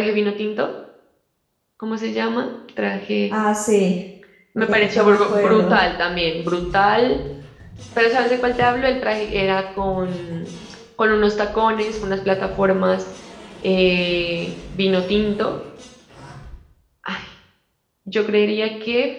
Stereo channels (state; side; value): identical; both; correlation 1.00